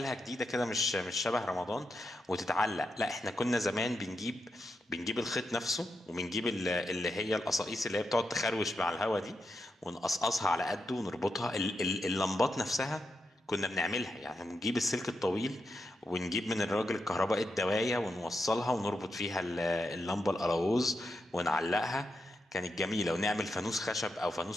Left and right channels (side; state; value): both; normal; correlation 0.85